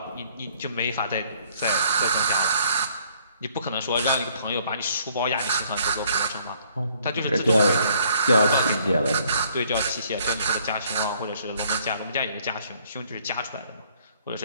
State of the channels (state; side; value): inverted; both; correlation -0.63